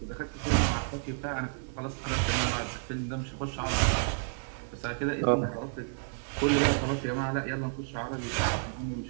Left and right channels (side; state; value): left; silent; 57 dB below the other